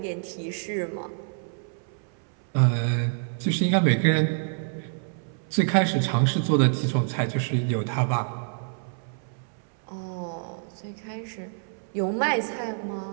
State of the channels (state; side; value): silent; left; 60 dB below the other